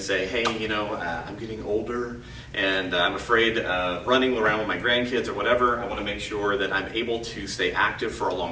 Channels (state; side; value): identical; both; correlation 1.00